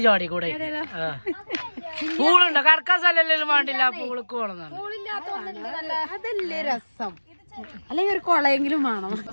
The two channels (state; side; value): inverted; both; correlation -1.00